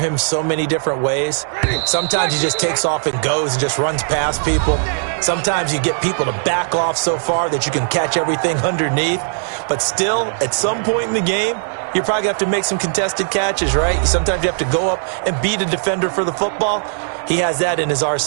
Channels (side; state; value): left; silent; digital silence